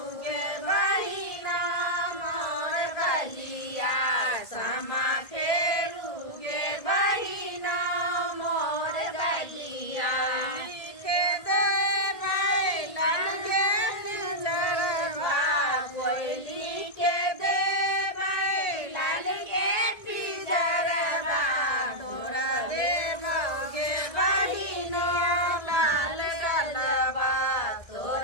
बहिना मोर बलिया समा फेरुगे बहिना मोर बलिया लिखे दे बैलन के पिंजरवा कोयली के दे बैलन के पिंजरवा तोरा देबोगे बहिनो लाल गलबा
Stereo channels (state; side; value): late; right; 1.6 ms